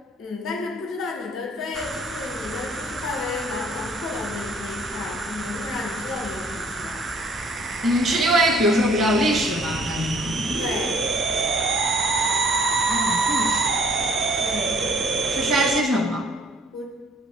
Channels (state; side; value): normal; both; correlation 0.58